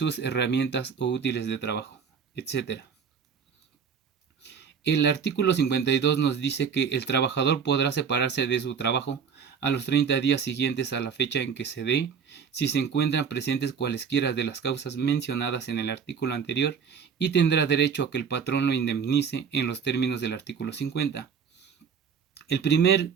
herramientas o útiles de trabajo, etc. El artículo 52 nos dice que el trabajador podrá separarse de su trabajo a los 30 días siguientes a la fecha en que se dé, si se encuentran presentes cualesquiera de las causas mencionadas en el artículo anterior, y tendrá derecho a que el patrón lo indemnice en los términos del artículo 50. El primer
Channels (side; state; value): left; quieter; 6.7 dB